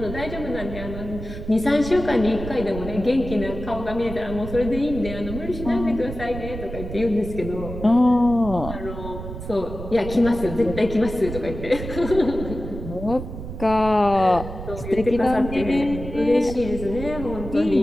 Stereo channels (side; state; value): right; noise; rumble, 9 dB below the sound